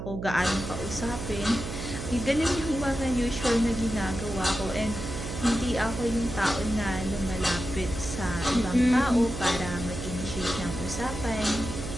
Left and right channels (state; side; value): noise; right; hum, 7 dB below the sound